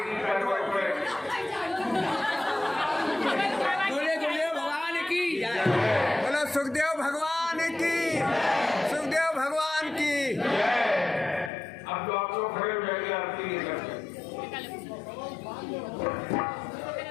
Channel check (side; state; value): right; drops out; at 11.5 s